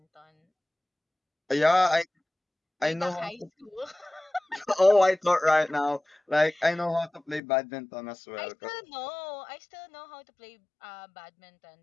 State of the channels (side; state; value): right; drops out; at 7.4 s